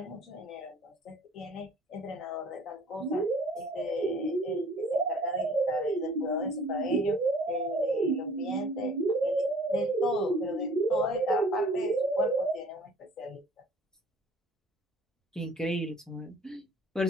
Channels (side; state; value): both; normal; correlation 0.51